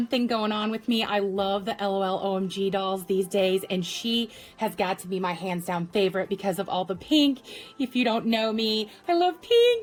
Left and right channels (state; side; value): identical; both; correlation 1.00